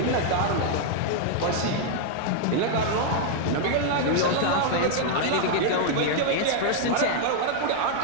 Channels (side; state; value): both; different; correlation 0.00